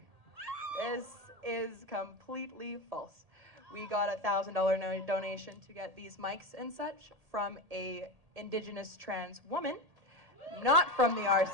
This is completely false. We got a $1,000 donation to get these mics and such from a Indigenous trans woman, not from the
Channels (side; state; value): left; late; 1.8 ms